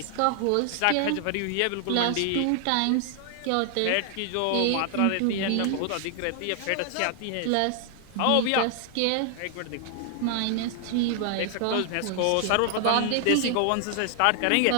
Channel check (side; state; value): both; different; correlation 0.00